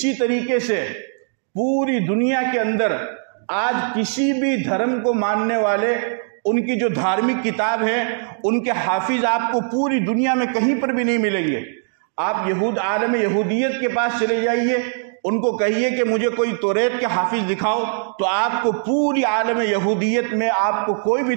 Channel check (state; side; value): silent; left; digital silence